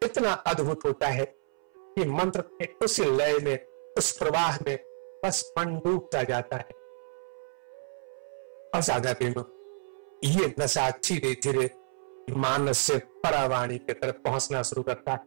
इतना अद्भुत होता है कि मंत्र के उस लय में, उस प्रवाह में बस मन डूबता जाता है। और साधा प्रेम, ये नशा धीरे धीरे मानस से परावाणी की तरफ पहुंचना शुरू करता है।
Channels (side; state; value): left; silent; 58 dB below the other